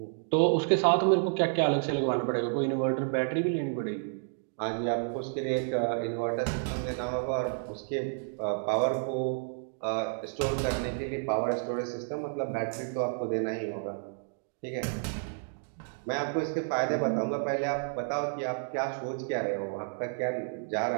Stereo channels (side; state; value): left; silent; digital silence